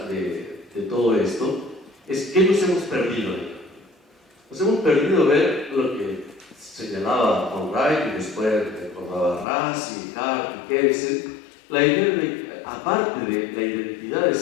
de todo esto es ¿qué nos hemos perdido ahí? Nos hemos perdido ver lo que señalaba von Wright y después recordaba Rassi, Hart y Kelsen, la idea de, aparte de la identidad del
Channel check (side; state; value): right; drops out; at 9.5 s